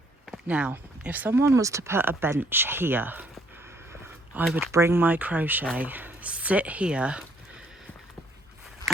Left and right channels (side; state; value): both; normal; correlation 0.66